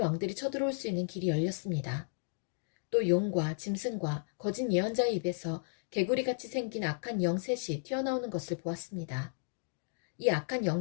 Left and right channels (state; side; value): silent; right; digital silence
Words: 쳐들어올 수 있는 길이 열렸습니다. 또 용과 짐승과 거짓 예언자의 입에서 개구리같이 생긴 악한 영 셋이 튀어나오는 것을 보았습니다. 이 악한